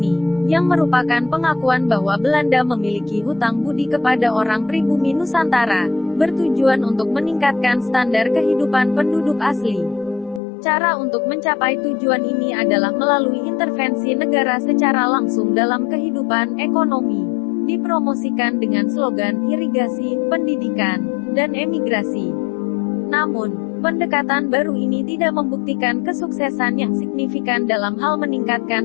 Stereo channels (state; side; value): drops out; right; at 10.4 s